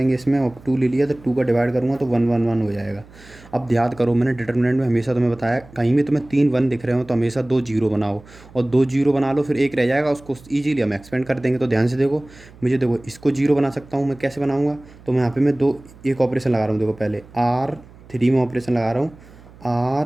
इसमें, और 2 ले लिया तो 2 का डिवाइड करूँगा तो 1 1 1 हो जाएगा। अब याद करो मैंने डिटर्मिनेंट में हमेशा तुम्हें बताया कहीं भी तुम्हें 3 1 दिख रहे हो तो हमेशा 2 जीरो बनाओ, और 2 जीरो बना लो, फिर एक रह जाएगा उसको ईजिली हम एक्सपेंड कर देंगे। तो ध्यान से देखो, मुझे देखो इसको जीरो बना सकता हूँ मैं, कैसे बनाऊँगा? तो मैं यहाँ पे मैं दो एक ऑपरेशन लगा रहा हूँ। देखो पहले R3 में ऑपरेशन लगा रहा हूँ,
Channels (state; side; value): noise; right; hum, 23 dB below the sound